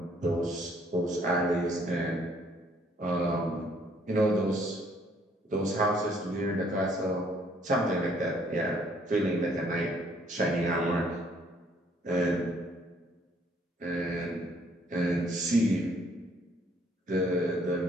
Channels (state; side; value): normal; both; correlation 0.64